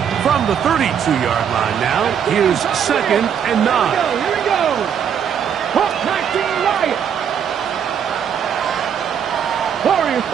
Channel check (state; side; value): quieter; left; 8.1 dB